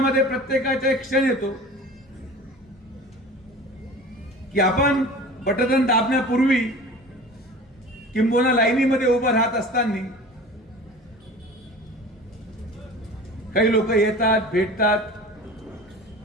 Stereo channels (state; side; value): normal; both; correlation 0.39